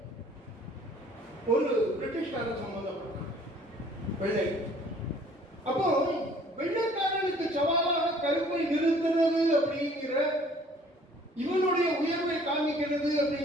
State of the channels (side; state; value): both; normal; correlation 0.55